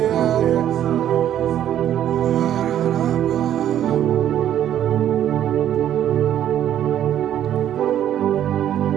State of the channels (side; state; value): left; quieter; 10.9 dB